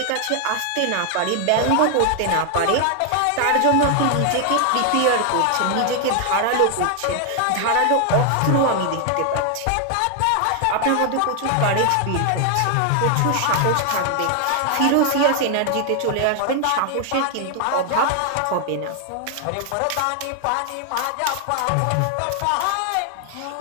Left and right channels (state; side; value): different; both; correlation 0.00